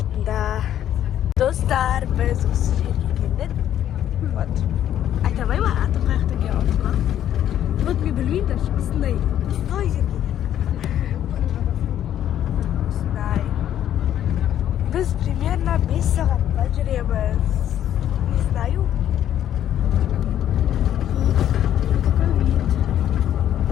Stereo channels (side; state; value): right; quieter; 11.0 dB